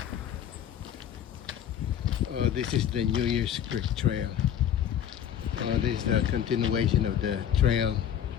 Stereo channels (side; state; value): right; quieter; 9.7 dB